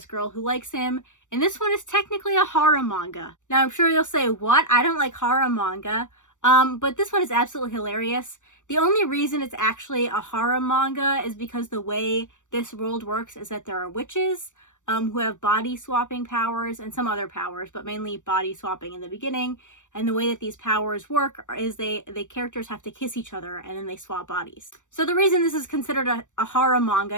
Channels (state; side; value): late; right; 0.85 ms